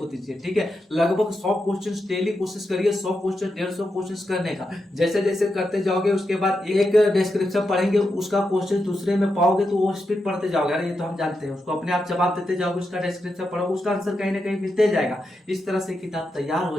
दीजिए, ठीक है। लगभग 100 क्वेश्चन डेली कोशिश करिए, 100 क्वेश्चन 150 क्वेश्चन करने का। जैसे जैसे करते जाओगे उसके बाद एक डिस्क्रिप्शन पढ़ेंगे, उसका क्वेश्चन दूसरे में पाओगे तो वो स्पीड पढ़ते जाओगे। अरे ये तो हम जानते हैं, उसको अपने आप जवाब देते जाओगे, उसका डिस्क्रिप्शन पढ़ोगे, उसका आंसर कहीं ना कहीं मिलते जाएगा। इस तरह से किताब तैयार हो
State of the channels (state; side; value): normal; both; correlation 0.86